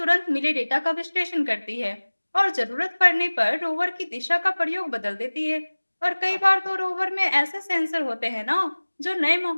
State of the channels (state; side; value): inverted; both; correlation -1.00